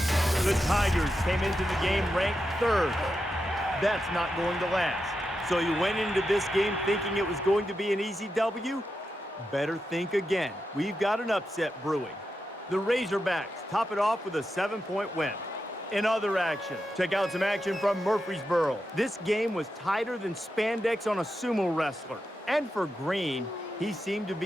The Tigers came into the game ranked 3rd. That's not going to last. So you went into this game thinking it was going to be an easy W? Better think again. We've got an upset brewing. The Razorbacks top it off with a 7-point win. In other action, check out some action from Murfreesboro. This game was tighter than spandex on a sumo wrestler. And for Green, he seemed to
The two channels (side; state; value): both; normal; correlation 0.88